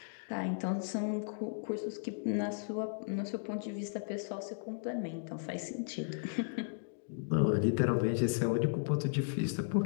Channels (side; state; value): right; silent; digital silence